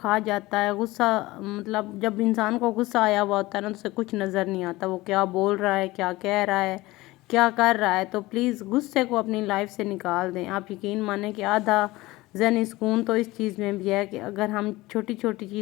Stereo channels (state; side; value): quieter; right; 19.6 dB